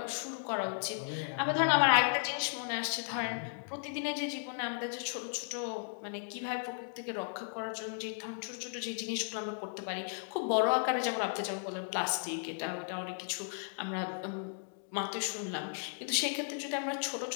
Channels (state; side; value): silent; right; digital silence